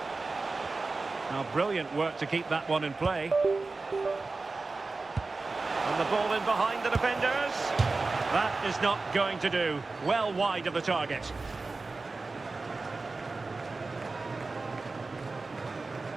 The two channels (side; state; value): left; quieter; 3.7 dB